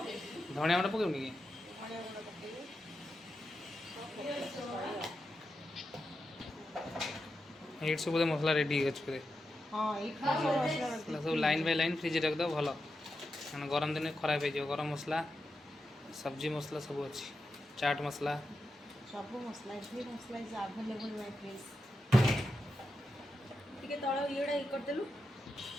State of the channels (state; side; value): normal; both; correlation 0.88